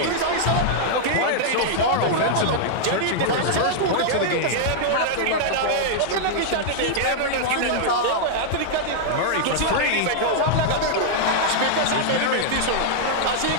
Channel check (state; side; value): different; both; correlation -0.01